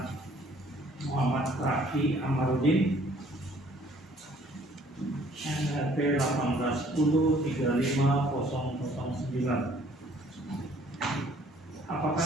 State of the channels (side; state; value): both; normal; correlation 0.59